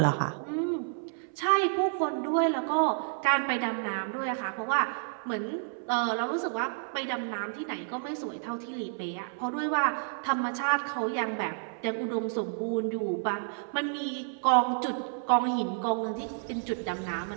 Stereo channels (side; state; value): left; silent; 58 dB below the other